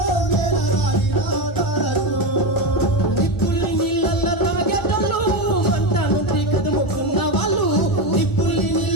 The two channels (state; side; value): late; right; 1.4 ms